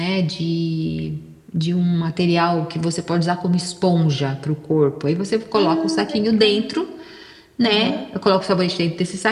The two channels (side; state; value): both; identical; correlation 1.00